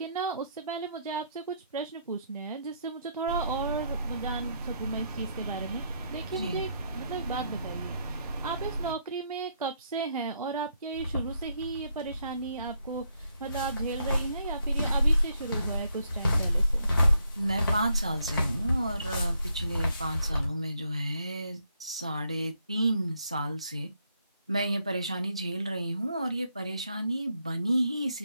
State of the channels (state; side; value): inverted; both; correlation -0.75